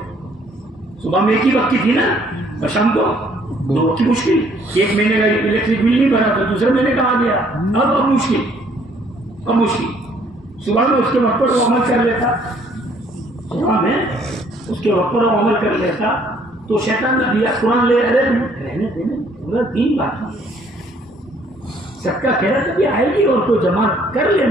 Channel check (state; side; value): normal; both; correlation 0.63